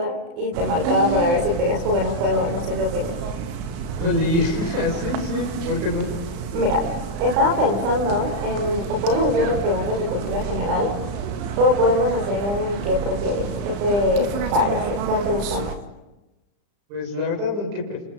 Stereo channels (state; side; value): late; left; 35 ms